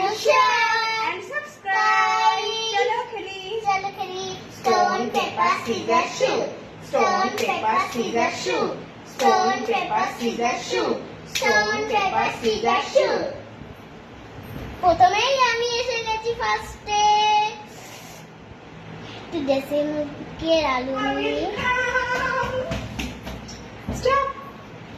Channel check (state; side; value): identical; both; correlation 1.00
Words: share and subscribe. চলো খেলি। চলো খেলি। Stone paper scissor shoot. Stone paper scissor shoot. Stone paper scissor shoot. Stone paper scissor shoot. প্রথমেই আমি এসে গেছি ফার্স্টে। একটু দেশে মুখের আলু নিয়ে। Stop.